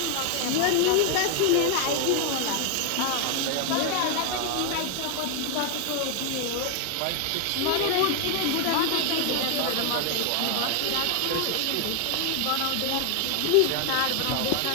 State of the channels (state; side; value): different; both; correlation 0.00